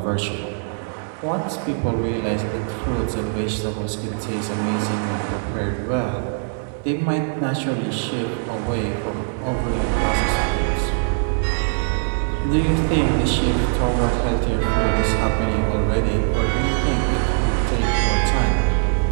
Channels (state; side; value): silent; left; 64 dB below the other